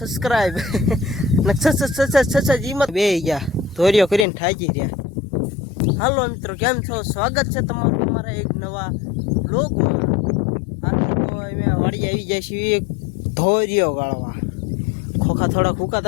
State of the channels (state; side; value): drops out; right; at 4.2 s